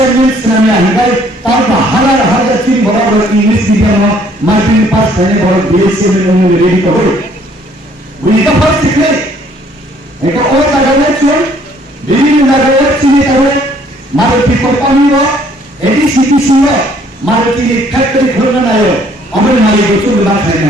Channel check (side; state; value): both; normal; correlation 0.62